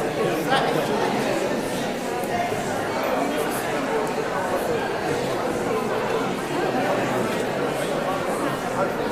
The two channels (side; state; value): right; noise; rumble, 25 dB below the sound